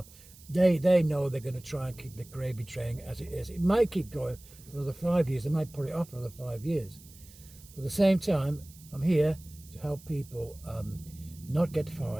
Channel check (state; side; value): noise; right; hiss, 22 dB below the sound